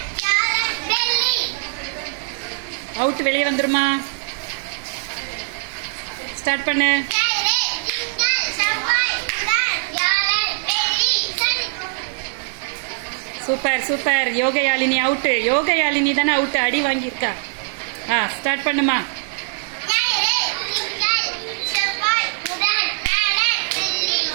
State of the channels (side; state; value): left; silent; digital silence